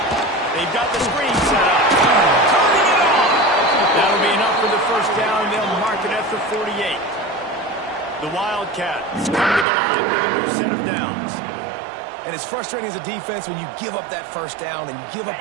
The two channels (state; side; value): drops out; left; at 9.7 s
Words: They've got the screen set up. Turning it on. That'll be enough for the first down. They'll mark it at the 48. The Wildcats come to the line with a new set of downs. And it's frustrating as a defense when you give up that first down and you give up